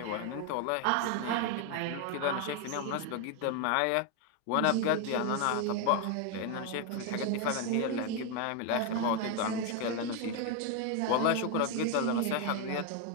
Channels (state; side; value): different; both; correlation 0.01